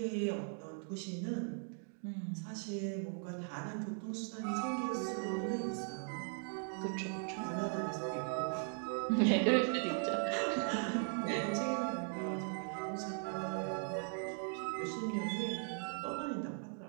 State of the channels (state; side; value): silent; left; 52 dB below the other